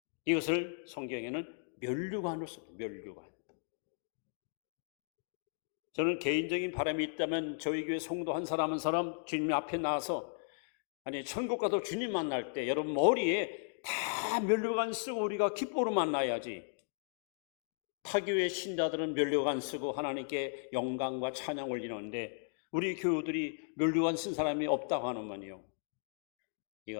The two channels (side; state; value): right; silent; digital silence